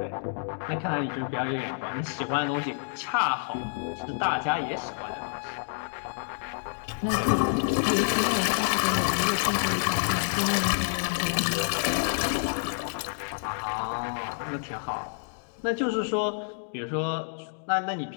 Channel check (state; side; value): silent; right; digital silence